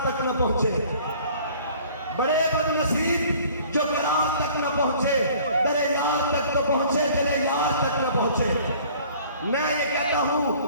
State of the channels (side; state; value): both; inverted; correlation -0.51